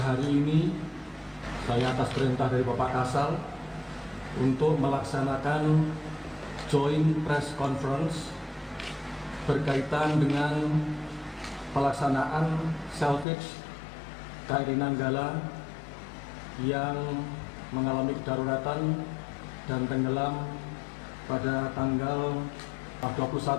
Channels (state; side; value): drops out; right; at 13.2 s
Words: ini, saya atas perintah dari Bapak Kasal untuk melaksanakan joint press conference berkaitan dengan pelaksanaan salvage KRI Nanggala yang mengalami kedaruratan dan tenggelam pada tanggal